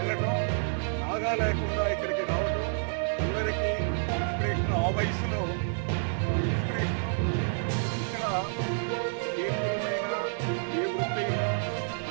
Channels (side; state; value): left; silent; 59 dB below the other